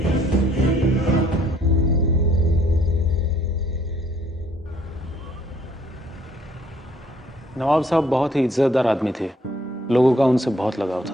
नवाब साहब बहुत ही इज्जतदार आदमी थे, लोगों का उनसे बहुत लगाव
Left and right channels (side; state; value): both; normal; correlation 0.63